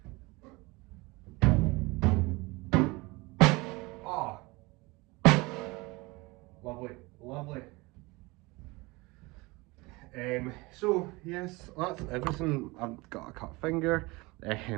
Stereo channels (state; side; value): quieter; left; 23.8 dB